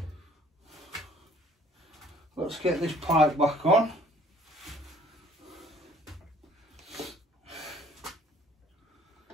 Let's get this pipe back on.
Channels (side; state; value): both; normal; correlation 0.57